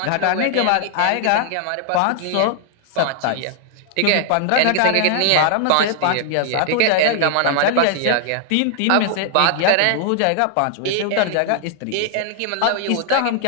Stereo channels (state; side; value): different; both; correlation 0.00